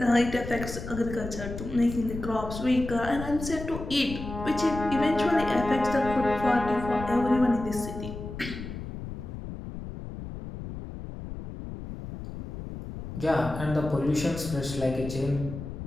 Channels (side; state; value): left; noise; rumble, 9 dB below the sound